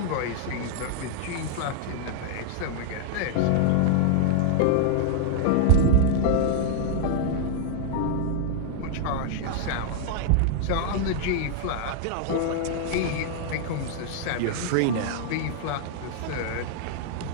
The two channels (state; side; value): different; both; correlation 0.00